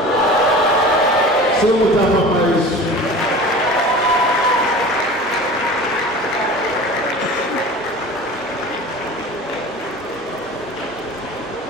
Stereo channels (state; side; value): normal; both; correlation 0.38